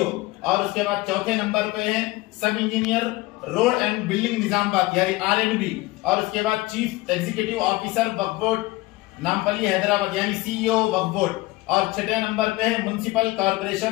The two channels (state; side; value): quieter; right; 20.5 dB